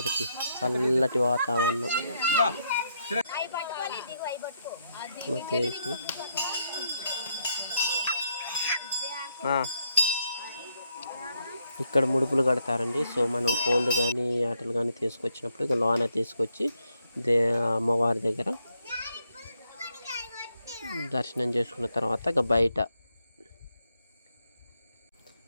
చల్లటి వాతావరణం. ఇక్కడ ముడుపులు కడతారండి. సో మనం కోళ్ళు కానీ ఆటలు కానీ తీసుకొచ్చినప్పుడు ఇక లోన తీసుకొచ్చి అమ్మవారి దగ్గర దర్శనం చేసుకున్న తర్వాత ఇక బయట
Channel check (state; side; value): inverted; both; correlation -0.77